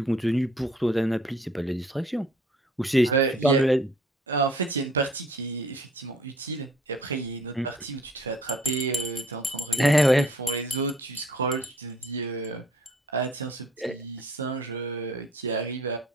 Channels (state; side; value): normal; both; correlation 0.56